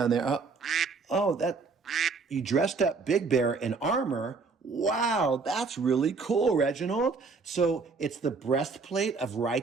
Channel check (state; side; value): quieter; left; 4.5 dB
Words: there? That you dressed up Big Bear in armor. Wow, that's really cool, Reginald. So it's the breastplate of